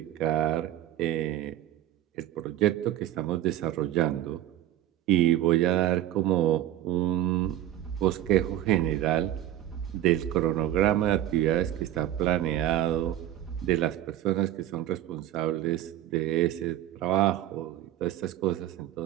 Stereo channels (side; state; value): left; quieter; 12.8 dB